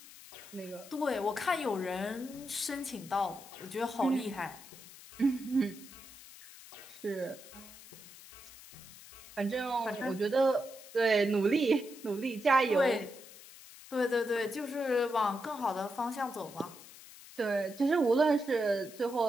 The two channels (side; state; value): left; noise; hiss, 18 dB below the sound